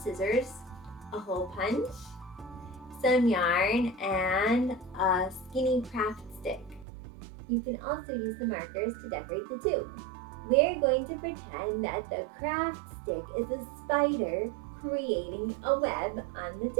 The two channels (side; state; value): left; drops out; at 6.9 s